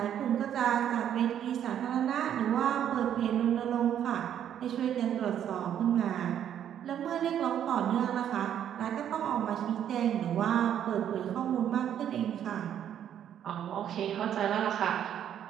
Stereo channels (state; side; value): quieter; left; 9.9 dB